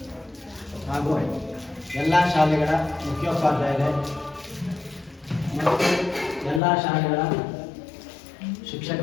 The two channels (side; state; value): right; drops out; at 6.6 s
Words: ಹಾಗೂ ಎಲ್ಲ ಶಾಲೆಗಳ ಮುಖ್ಯೋಪಾಧ್ಯಾಯರೇ ಮತ್ತು ಎಲ್ಲ ಶಾಲೆಗಳ